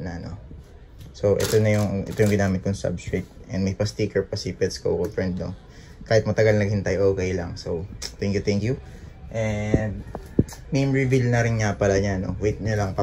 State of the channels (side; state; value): both; identical; correlation 1.00